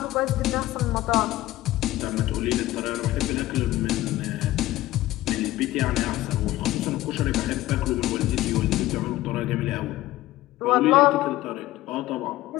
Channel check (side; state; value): right; quieter; 16.3 dB